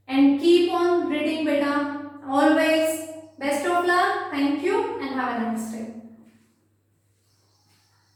And keep on reading, beta. Always. Best of luck. Thank you and have a nice day.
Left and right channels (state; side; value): identical; both; correlation 1.00